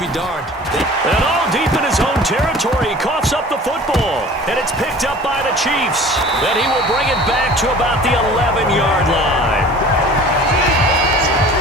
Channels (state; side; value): normal; both; correlation 0.44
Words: darned. And all deep in his own territory, he coughs up the football, and it's picked up by the Chiefs. Then he will bring it back to about the 11-yard line.